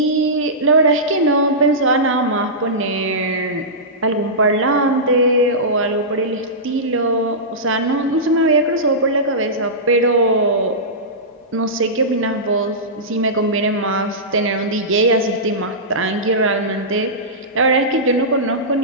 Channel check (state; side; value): normal; both; correlation -0.16